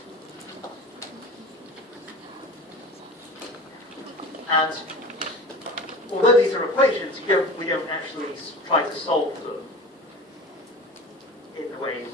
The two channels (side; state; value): both; normal; correlation 0.37